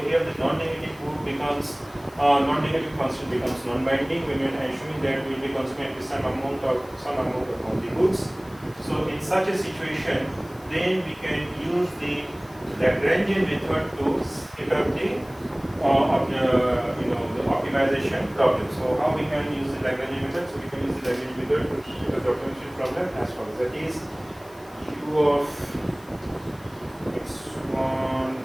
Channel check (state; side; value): noise; left; hiss, 26 dB below the sound